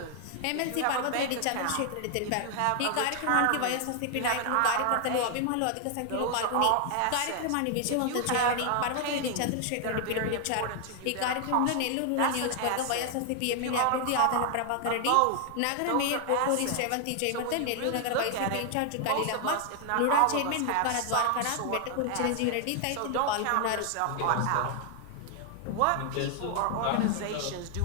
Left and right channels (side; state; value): both; different; correlation 0.00